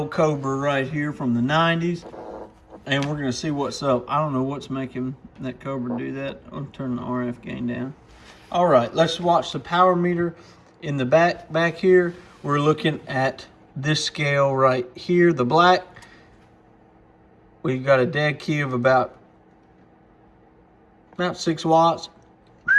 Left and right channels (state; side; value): identical; both; correlation 1.00